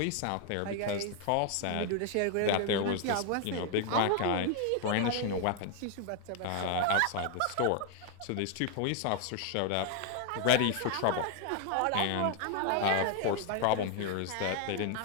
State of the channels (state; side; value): different; both; correlation 0.00